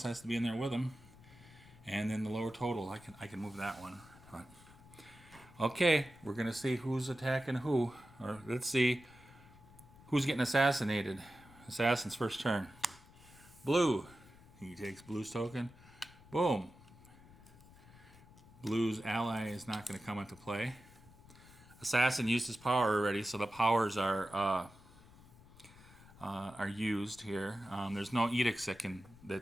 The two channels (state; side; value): noise; left; rumble, 22 dB below the sound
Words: has to be in there with him. And then the lower total, I can move that one. But, okay, we're going to see who's attacking who. Or let's see who's getting assassinated. Assassin's first turn. Blue, He takes blue's token. Boom. Blue's ally is not going to come into play. Assassin used his power already, so the powers are used here. There's no edicts that can